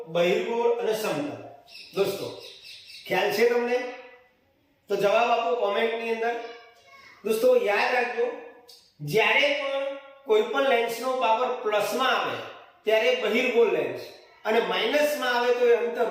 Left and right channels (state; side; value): identical; both; correlation 1.00